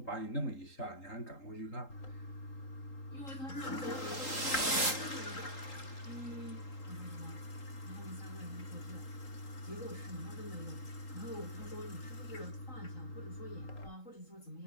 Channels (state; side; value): late; right; 3.8 ms